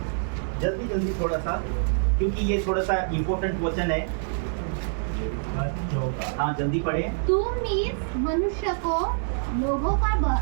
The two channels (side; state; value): left; silent; digital silence